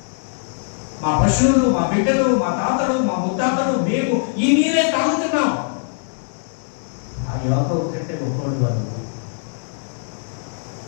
మా పశువులు, మా బిడ్డలు, మా తాతలు, మా ముత్తాతలు, మేము ఈ నీరే తాగుతున్నాం. ఆ యాకోబు కంటే గొప్పవాడు వాళ్ళు.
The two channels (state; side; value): silent; right; digital silence